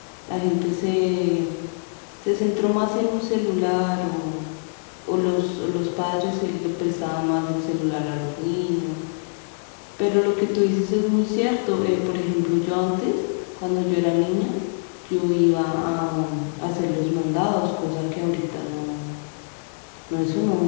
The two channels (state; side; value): silent; right; digital silence